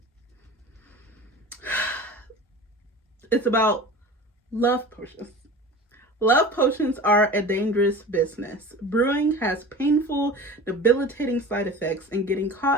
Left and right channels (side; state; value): both; normal; correlation 0.36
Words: it's about love potions. Love potions are a dangerous business. Brewing has painful, debilitating side effects, and getting